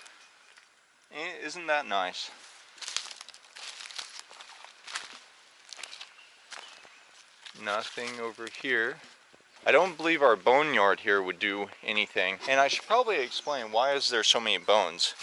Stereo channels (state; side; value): identical; both; correlation 1.00